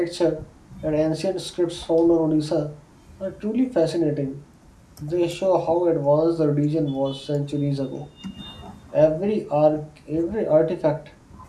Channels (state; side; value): identical; both; correlation 1.00